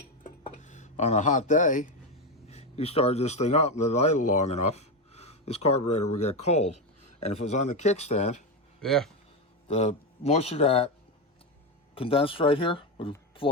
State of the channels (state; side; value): normal; both; correlation 0.12